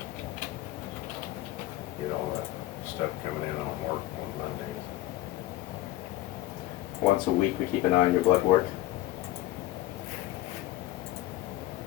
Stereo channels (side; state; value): right; quieter; 15.8 dB